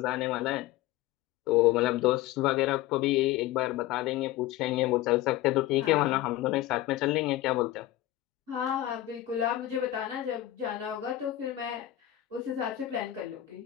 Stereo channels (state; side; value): quieter; right; 14.6 dB